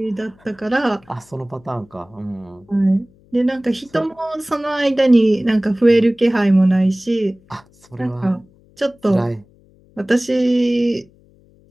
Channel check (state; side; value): noise; left; hum, 30 dB below the sound